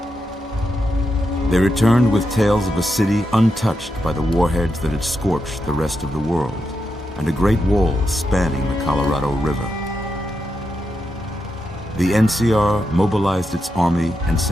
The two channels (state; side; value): normal; both; correlation 0.86